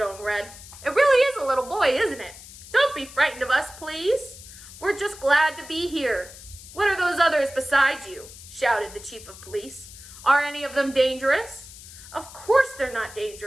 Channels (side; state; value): left; noise; hiss, 17 dB below the sound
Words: red. It really is a little boy, isn't it? Don't be frightened of us, please. We're just glad to be here. What are those others beside you? Shouted the chief of police. Are any of them dangerous? Of course they're not